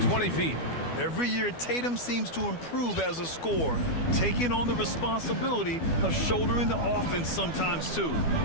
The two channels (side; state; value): right; late; 12 ms